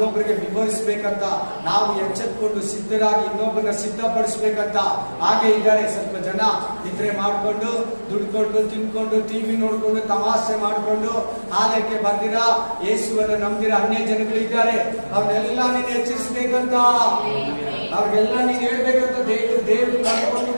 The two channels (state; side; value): inverted; both; correlation -1.00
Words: ವಿವರಿಸಬೇಕಂತ, ನಾವು ಎಚ್ಚೆತ್ಕೊಂಡು ಸಿದ್ಧರಾಗಿ ಇನ್ನೊಬ್ಬರನ್ನ ಸಿದ್ಧಪಡಿಸ್ಬೇಕಂತ ಹಾಗೆ ಇದ್ದಾರೆ. ಸ್ವಲ್ಪ ಜನ ನಿದ್ರೆ ಮಾಡ್ಕೊಂಡು, ದುಡ್ಕೊಂಡು, ತಿನ್ಕೊಂಡು, ಟಿವಿ ನೋಡ್ಕೊಂಡು, ತಮಾಷೆ ಮಾಡ್ಕೊಂಡು ಆಲಯಕ್ಕೆ ಬಂದಿರ, ಯೇಸುವನ್ನು ನಂಬಿರ ಅನ್ಯ ಜನಗಳಿದ್ದಾರೆ. ಅವ್ರನ್ನೆಲ್ಲ ನೀನು ಎಚ್ಚರಿಸಬೇಕಂತ, ಅವ್ರಿಗೆಲ್ಲ ನೀನು ಹೇಳ್ಬೇಕಂತ ದೇವರು ಕರ್ಕೊಂಡು